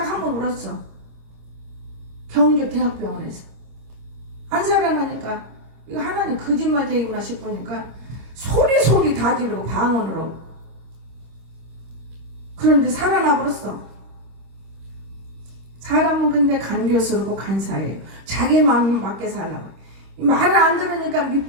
한 번 울었어. 경주 대학병원에서. 안 살아나니까 이거 하나님 거짓말쟁이구나 싶으니까 소리 다 지르고 방언으로. 그런데 살아나 버렸어. 사람은 근데 간교스럽고 간사해요. 자기 마음 맞게 살라고. 말을 안 들으니까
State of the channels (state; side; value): late; left; 26 ms